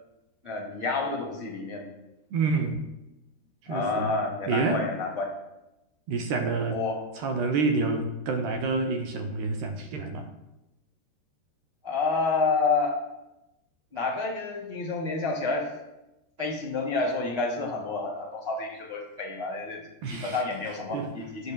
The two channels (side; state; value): left; late; 13 ms